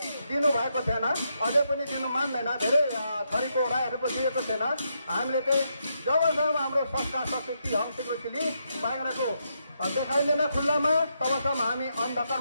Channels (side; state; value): both; inverted; correlation -0.80